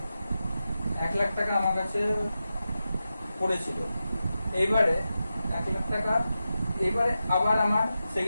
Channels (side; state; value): both; inverted; correlation -0.91